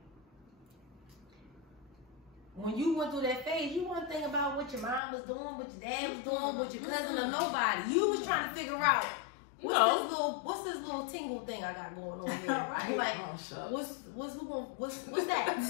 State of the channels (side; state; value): right; drops out; at 5.0 s